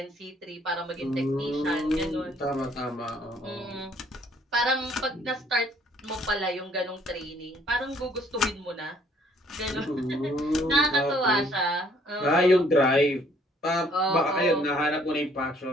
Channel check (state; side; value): normal; both; correlation 0.62